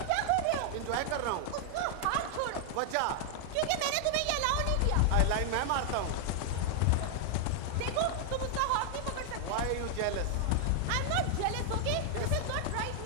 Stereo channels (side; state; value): both; different; correlation 0.00